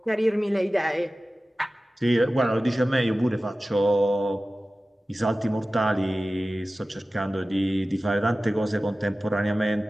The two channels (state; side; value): normal; both; correlation 0.96